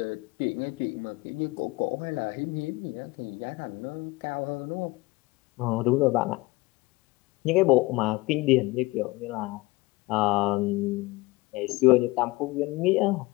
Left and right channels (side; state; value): right; quieter; 22.1 dB